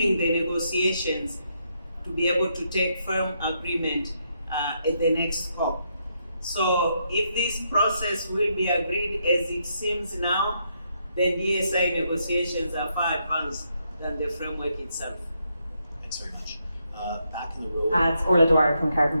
the negotiations to be able to take firm agreement at the next COP. So if this process will be agreed as it seems now, then DSI negotiations are far advanced than the framework itself. Thanks very much. Back in the row. It's Orla Dwyer from Carbon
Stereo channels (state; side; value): inverted; both; correlation -0.78